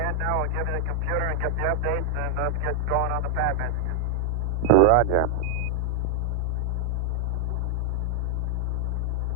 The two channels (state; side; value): late; left; 3.3 ms